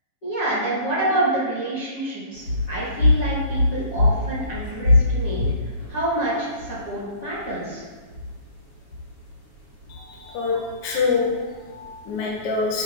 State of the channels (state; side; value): late; right; 7.3 ms